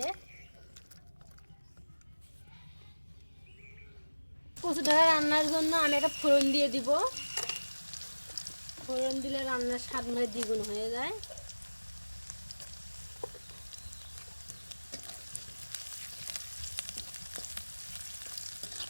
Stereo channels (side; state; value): both; inverted; correlation -1.00